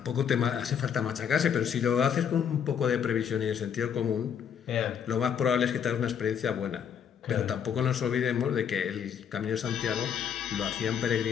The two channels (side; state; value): right; quieter; 8.0 dB